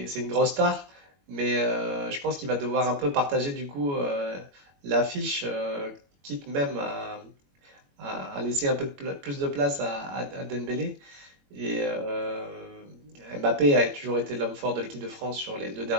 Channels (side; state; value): left; late; 21 ms